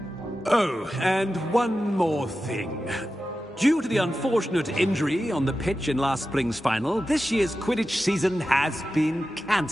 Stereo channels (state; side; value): normal; both; correlation 0.92